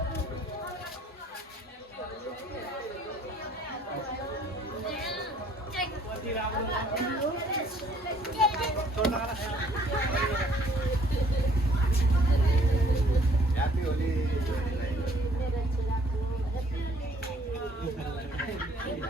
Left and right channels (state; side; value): normal; both; correlation 0.60